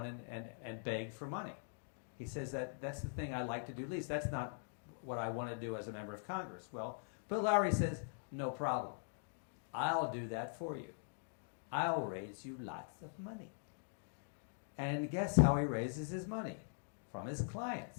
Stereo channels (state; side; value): silent; right; digital silence